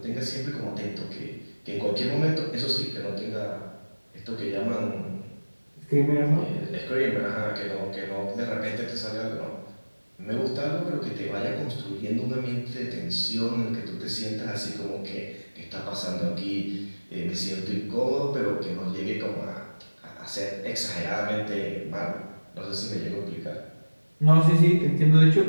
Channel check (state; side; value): inverted; both; correlation -1.00